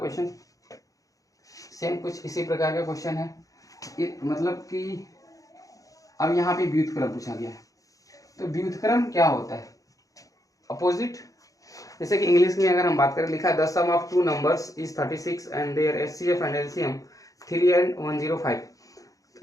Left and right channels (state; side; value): late; right; 0.17 ms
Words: सेम कुछ इसी प्रकार का क्वेश्चन है। मतलब कि अब यहाँ पे व्युत्क्रम पूछा गया है। तो व्युत्क्रम क्या होता है, अपोजिट। जैसे कि इंग्लिश में अगर हम बात करें, लिखा है the sum of 2 numbers is 36 and their SCF and LCM 3 and 105